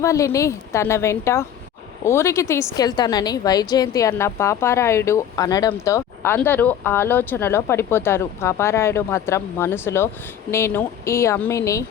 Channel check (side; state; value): right; quieter; 9.6 dB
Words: తన వెంట ఊరికి తీసుకెళ్తానని వైజయంతి అన్న పాపారాయుడు అనడంతో అందరూ ఆలోచనలో పడిపోతారు. పాపారాయుడు మాత్రం మనసులో, నేను ఈ అమ్మిని